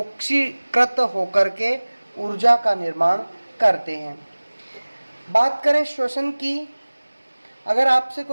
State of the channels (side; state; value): both; inverted; correlation -1.00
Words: होकर के ऊर्जा का निर्माण करते हैं। बात करें श्वसन की, अगर आपसे